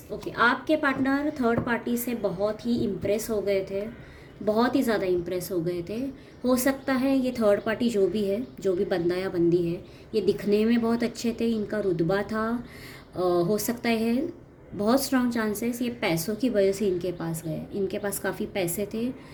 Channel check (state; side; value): identical; both; correlation 1.00